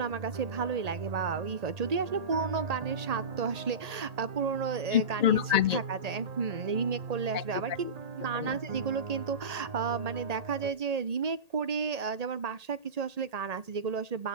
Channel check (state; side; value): late; left; 1.8 ms